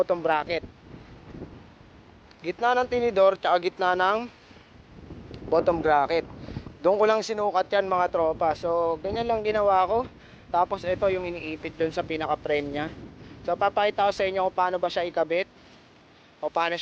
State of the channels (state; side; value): identical; both; correlation 1.00